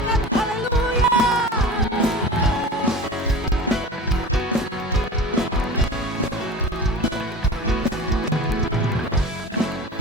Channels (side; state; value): both; normal; correlation 0.34